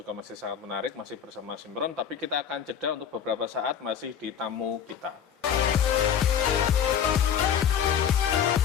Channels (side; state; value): right; quieter; 8.4 dB